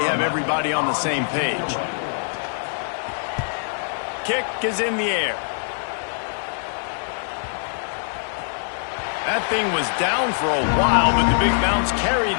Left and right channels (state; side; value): silent; right; digital silence